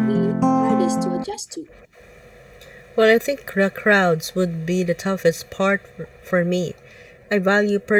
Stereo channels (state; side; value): identical; both; correlation 1.00